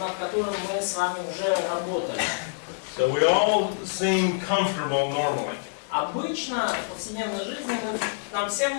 которым мы с вами уже работали. So we all seem comfortable normally. Обычно в повседневной жизни нам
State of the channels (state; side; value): silent; right; 61 dB below the other